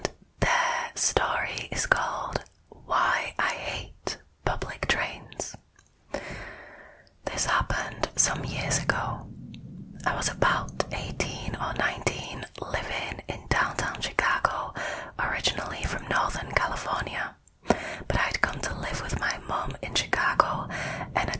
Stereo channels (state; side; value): identical; both; correlation 1.00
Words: their story is called Why I Hate Public Trains. This happened some years ago. I was about 18 or 19, living in downtown Chicago, originally from Northern California, but I'd come to live with my mum in Chicago and